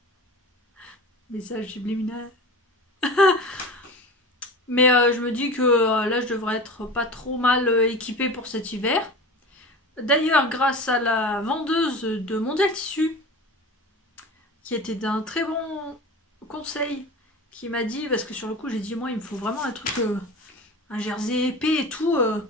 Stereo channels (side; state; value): both; normal; correlation 0.33